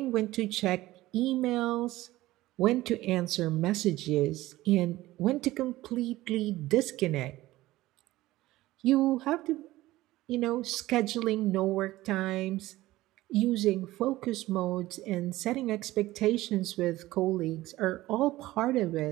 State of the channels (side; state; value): left; quieter; 17.1 dB